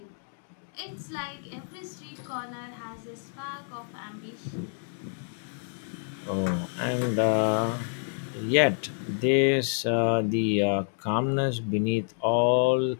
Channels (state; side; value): silent; right; 59 dB below the other